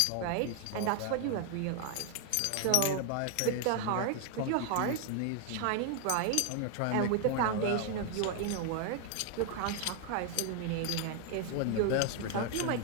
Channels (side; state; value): both; different; correlation 0.00